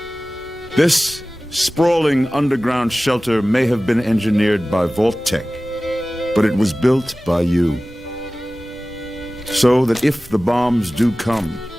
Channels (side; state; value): both; normal; correlation 0.97